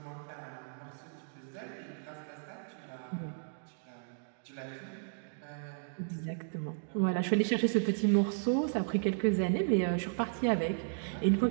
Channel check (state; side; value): silent; left; digital silence